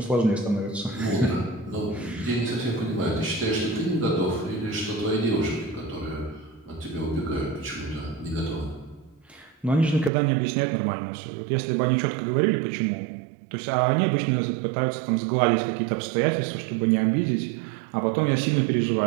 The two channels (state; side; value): drops out; left; at 10.1 s